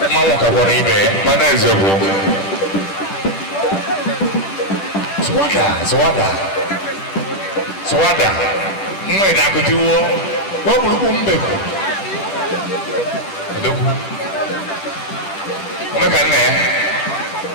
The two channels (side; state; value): right; late; 10 ms